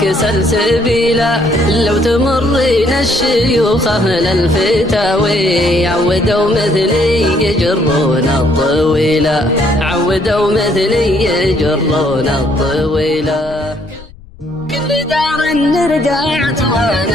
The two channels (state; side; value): noise; left; rumble, 21 dB below the sound